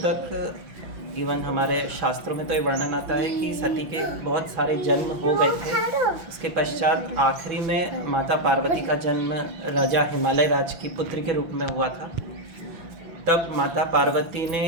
इवन हमारे शास्त्रों में तो ये वर्णन आता है कि सती के बहुत सारे जन्म हो गए थे। उसके पश्चात आखिरी में माता पार्वती का जन्म राजा हिमालय राज की पुत्री के रूप में हुआ था। तब माता पार्वती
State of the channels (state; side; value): late; left; 6.0 ms